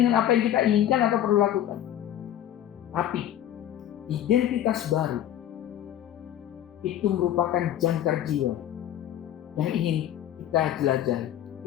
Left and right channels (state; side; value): quieter; right; 11.4 dB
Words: dengan apa yang kita inginkan atau perlu lakukan. Tapi identitas baru itu merupakan jangkar jiwa yang ingin kita jelajahi.